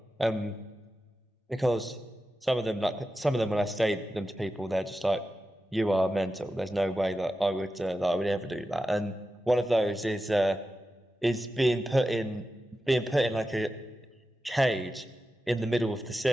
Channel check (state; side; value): normal; both; correlation 0.91